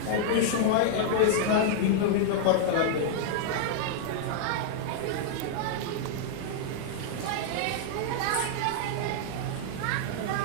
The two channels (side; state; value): both; different; correlation -0.01